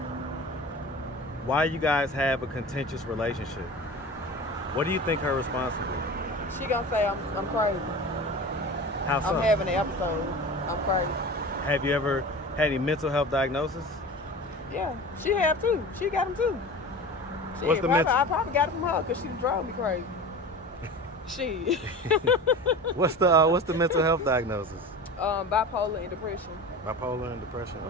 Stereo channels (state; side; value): normal; both; correlation 0.34